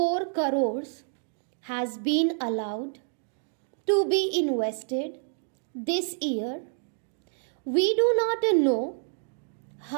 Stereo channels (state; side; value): silent; left; 59 dB below the other